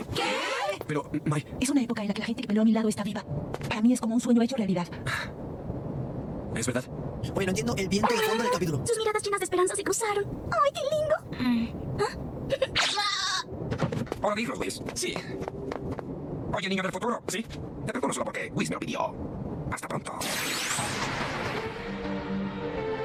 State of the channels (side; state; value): both; identical; correlation 1.00